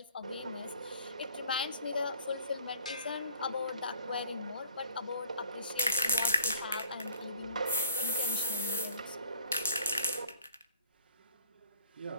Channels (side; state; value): both; inverted; correlation -0.55